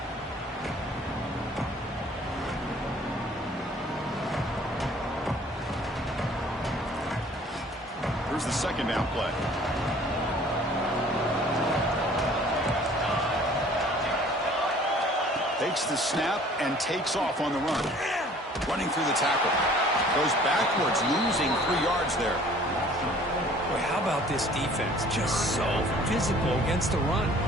Here's the second down play. Takes the snap and takes off on the run. Running through the tackle. Goes backwards, losing 3 yards there. Boy, how about this defense? Just so physical against the run.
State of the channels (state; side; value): normal; both; correlation 0.52